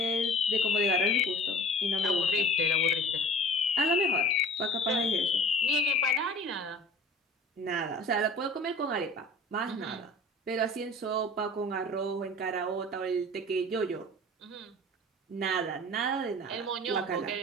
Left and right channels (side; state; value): both; normal; correlation 0.42